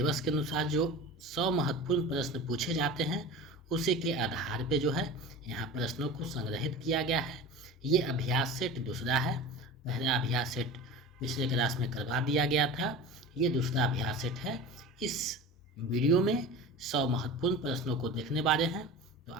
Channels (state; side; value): normal; both; correlation 0.33